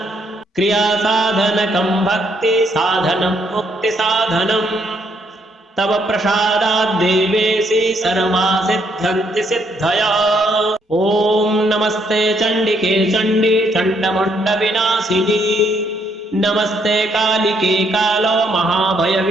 क्रियासाधनकं भक्तिसाधनं मुक्तिसाधनम् तव प्रसादात् देवेशि सर्वा सिद्ध्यन्ति सिद्धयः ॐ नमस्ते चण्डिके चण्डी चण्डमुण्डविनाशिनी नमस्ते कालिके कालो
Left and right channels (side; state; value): both; normal; correlation 0.72